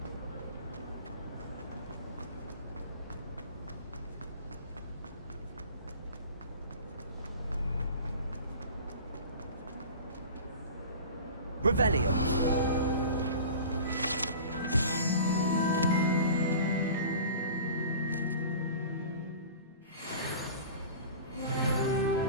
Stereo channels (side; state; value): both; inverted; correlation -0.39